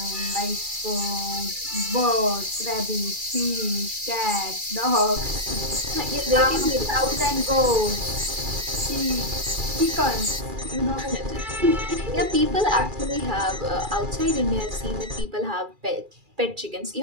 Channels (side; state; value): left; late; 2.4 ms